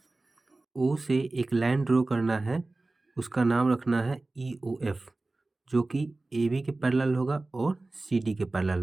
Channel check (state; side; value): quieter; left; 3.1 dB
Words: O से एक लाइन ड्रॉ करना है, उसका नाम रखना है ई ओ एफ, जो कि ए बी के पैरेलल होगा और सी डी के